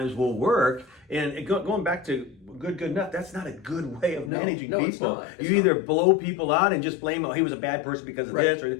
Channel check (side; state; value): right; drops out; at 4.3 s